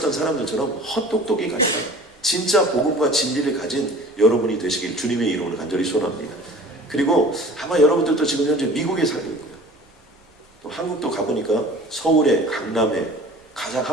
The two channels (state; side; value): normal; both; correlation 0.44